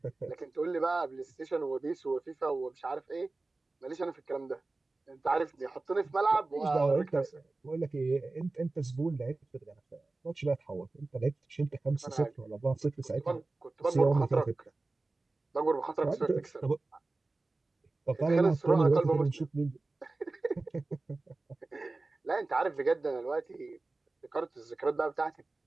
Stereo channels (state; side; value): quieter; left; 3.3 dB